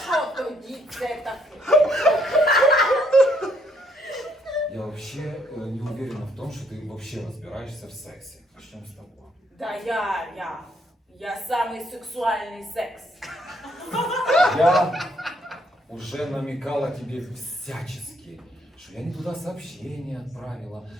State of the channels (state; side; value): normal; both; correlation 0.70